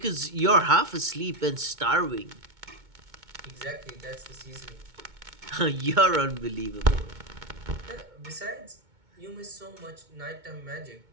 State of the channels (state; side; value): late; left; 2.2 ms